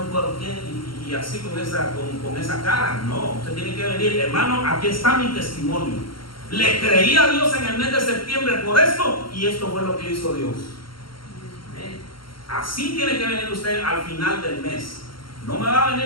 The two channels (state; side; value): late; right; 0.73 ms